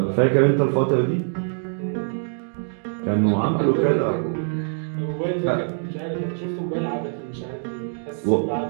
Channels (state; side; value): silent; left; digital silence